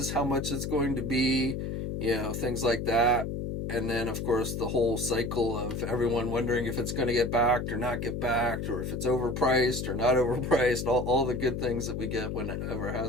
how much it's going to be, things like that. And then, of course, the whole cycle of everyone wondering if it's going to get backed or not get backed, or if it's overpriced or not overpriced, all the good things that we get whenever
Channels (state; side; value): noise; left; hum, 3 dB below the sound